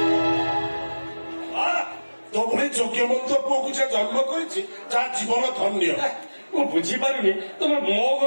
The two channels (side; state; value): both; inverted; correlation -1.00